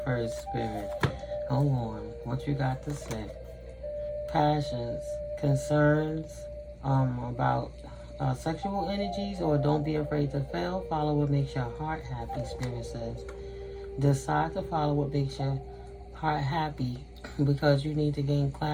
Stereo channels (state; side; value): identical; both; correlation 1.00